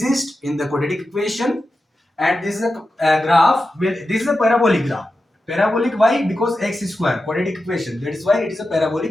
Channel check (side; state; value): both; normal; correlation 0.91